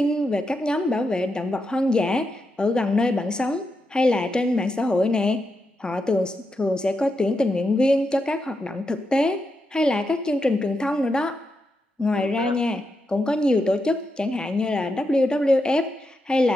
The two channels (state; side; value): normal; both; correlation 0.85